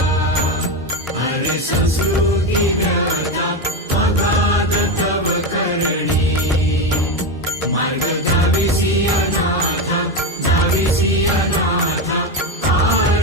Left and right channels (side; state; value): both; normal; correlation 0.14